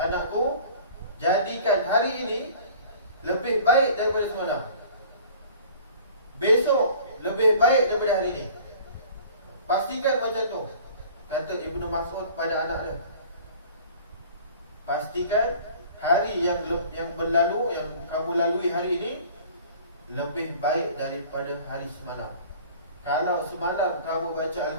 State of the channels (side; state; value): both; inverted; correlation -0.47